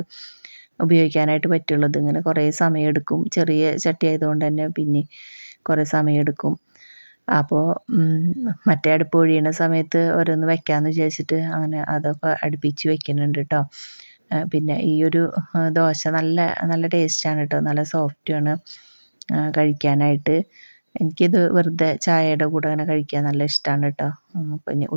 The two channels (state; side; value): inverted; both; correlation -1.00